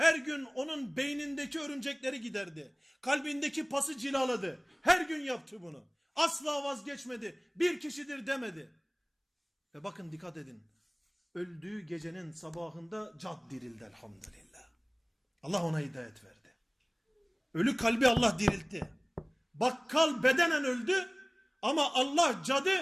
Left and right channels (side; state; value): both; identical; correlation 1.00